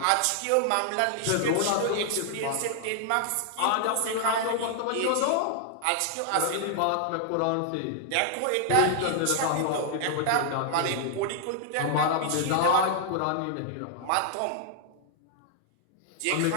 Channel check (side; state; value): both; different; correlation 0.00